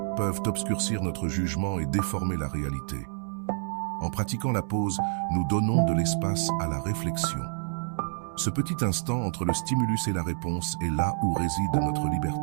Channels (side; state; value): left; silent; digital silence